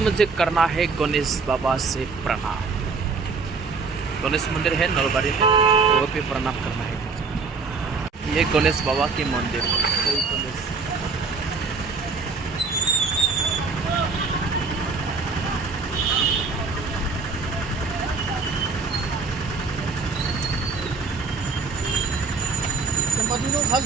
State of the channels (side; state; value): left; quieter; 4.5 dB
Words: करना है गणेश बाबा से प्रणाम। गणेश मंदिर है नलबाड़ी में, तो वो भी प्रणाम करना है मुझे। ये गणेश बाबा के मंदिर है। जय गणेश।